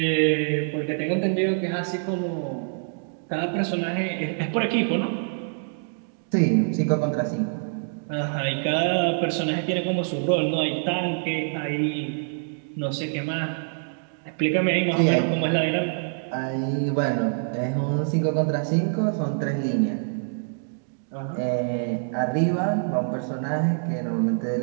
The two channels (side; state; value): left; silent; digital silence